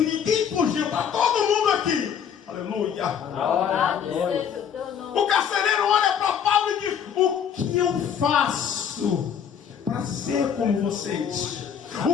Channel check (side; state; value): right; quieter; 8.1 dB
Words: fugiu, está todo mundo aqui, aleluia. O carcereiro olha para Paulo e diz: o que eu faço para ser como vocês?